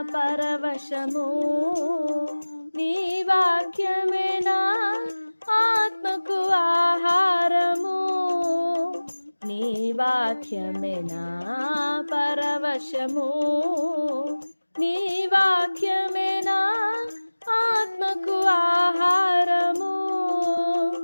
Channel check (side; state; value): both; inverted; correlation -1.00